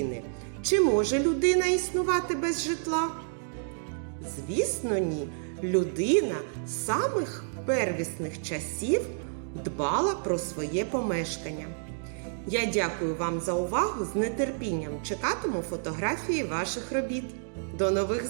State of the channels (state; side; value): silent; left; digital silence